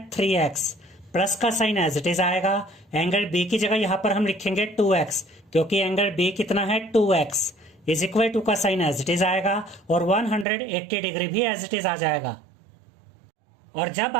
3x, प्लस का साइन एज इट इज आएगा। एंगल बी की जगह यहाँ पर हम लिखेंगे 2x, क्योंकि एंगल बी कितना है 2x, इज इक्वल टू का साइन एज इट इज आएगा और 180 डिग्री भी एज इट इज आ जाएगा। और जब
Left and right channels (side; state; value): left; drops out; at 10.5 s